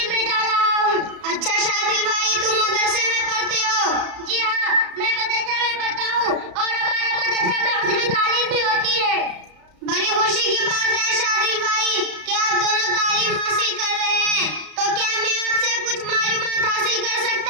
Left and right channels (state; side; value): late; left; 33 ms